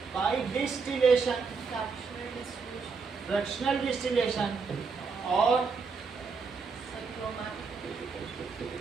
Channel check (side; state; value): left; quieter; 4.9 dB